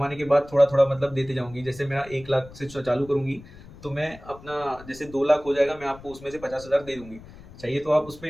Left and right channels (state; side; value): noise; left; rumble, 19 dB below the sound